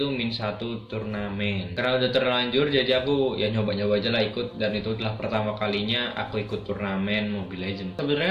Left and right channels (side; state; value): both; identical; correlation 1.00